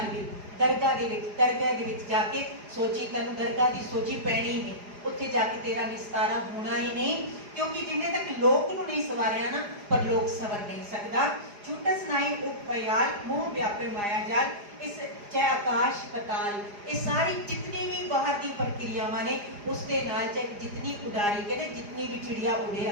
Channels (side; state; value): left; late; 4.9 ms